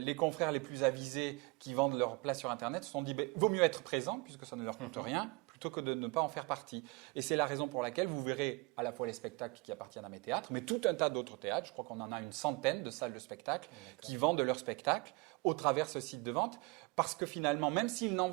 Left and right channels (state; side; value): quieter; left; 27.1 dB